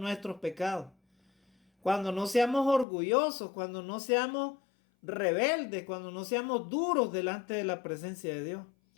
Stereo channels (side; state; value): right; drops out; at 2.9 s